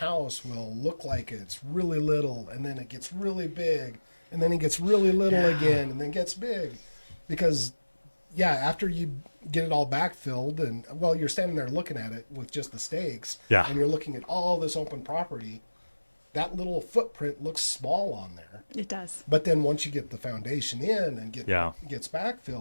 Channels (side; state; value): both; inverted; correlation -1.00